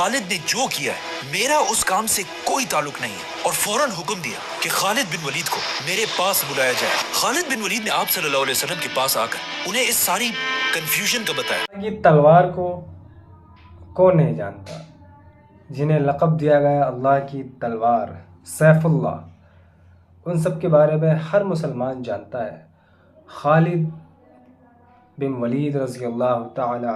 نے جو کیا ہے میرا اس کام سے کوئی تعلق نہیں ہے، اور فوراً حکم دیا کہ خالد بن ولید کو میرے پاس بلایا جائے۔ خالد بن ولید نے آپ صلی اللہ علیہ وسلم کے پاس آ کر انہیں اس ساری کنفیوژن کا بتایا۔ یہ تلوار کو کون نہیں جانتا، جنہیں لقب دیا گیا اللہ کی تلوار، سیف اللہ، ان سب کے بارے میں ہر مسلمان جانتا ہے۔ خالد بن ولید رضی اللہ تعالی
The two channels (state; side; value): identical; both; correlation 1.00